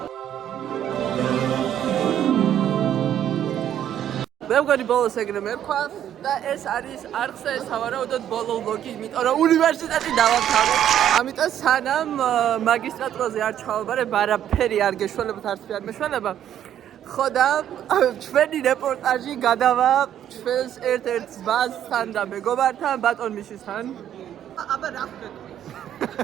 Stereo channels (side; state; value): left; quieter; 10.5 dB